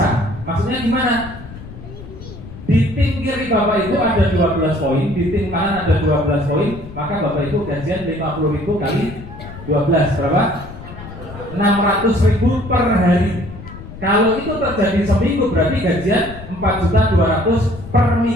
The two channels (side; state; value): left; noise; rumble, 14 dB below the sound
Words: Maksudnya gimana? Di tim kiri Bapak Ibu ada 12 poin, di tim kanan ada 12 poin, maka Bapak Ibu gajian 50.000 kali 12 berapa? 600.000 per hari. Kalau itu terjadi seminggu berarti gajian 4.200.000 per